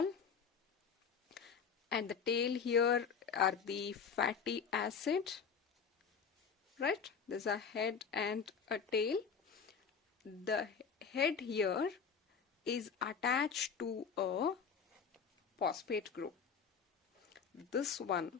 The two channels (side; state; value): right; quieter; 6.3 dB